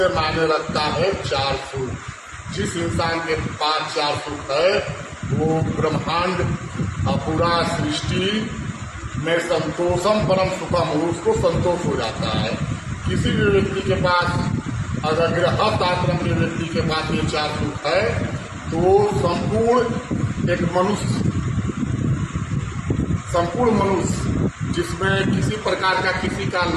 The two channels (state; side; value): identical; both; correlation 1.00